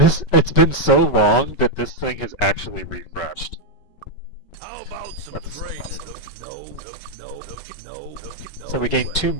been so long that this thing has actually refreshed. How about some That's training? awesome. No. So we gained 2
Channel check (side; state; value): right; late; 5.3 ms